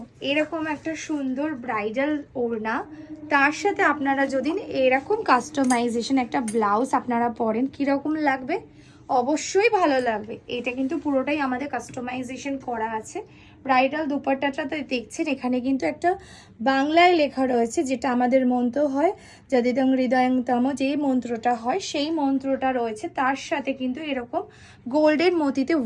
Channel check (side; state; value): both; identical; correlation 1.00